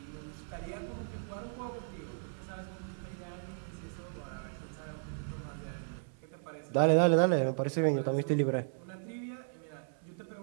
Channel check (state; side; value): silent; left; 54 dB below the other